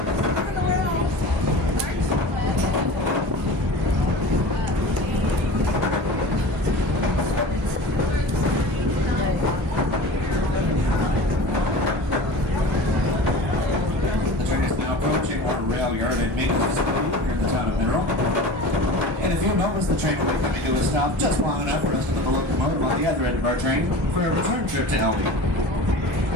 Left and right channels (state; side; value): normal; both; correlation 0.35